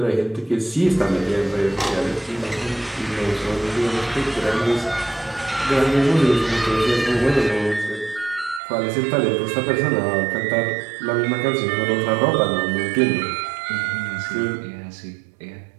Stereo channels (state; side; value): drops out; left; at 8.6 s